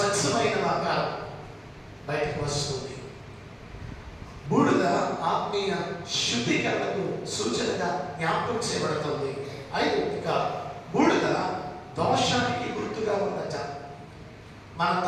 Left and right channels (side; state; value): both; identical; correlation 1.00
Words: ఆకారం బయటకు వస్తుంది. బూడిద ఆత్మీయ శుద్ధీకరణకు సూచనగా జ్ఞాపకం చేయబడుతుంది. ఇక బూడిద దోషానికి గుర్తుగా ఉందట. మన